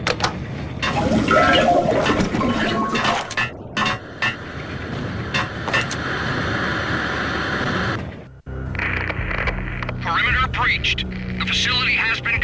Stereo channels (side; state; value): both; identical; correlation 1.00